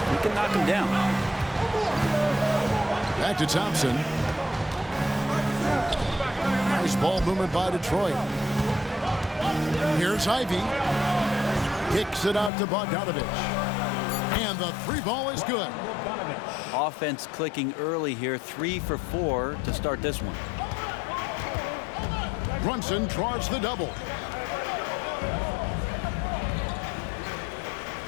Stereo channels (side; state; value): right; drops out; at 12.5 s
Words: he can knock him down. Back to Thompson. Nice ball movement by Detroit. Here's Ivy. Kicks it out to Bogdanovich. And the three ball is good. Offense clicking early here, 3 for 4 to start this one. Brunson draws the double.